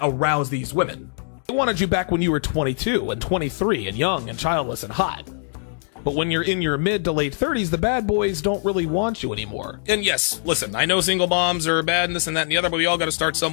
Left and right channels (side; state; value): right; silent; digital silence